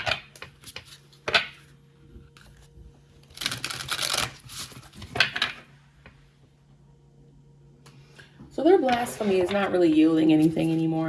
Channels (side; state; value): both; identical; correlation 1.00